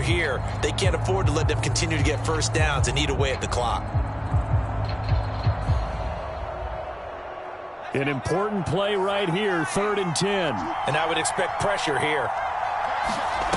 here. They can't afford to let them continue to get first downs and eat away at the clock. An important play right here, 3rd and 10. And I would expect pressure here.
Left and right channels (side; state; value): both; identical; correlation 1.00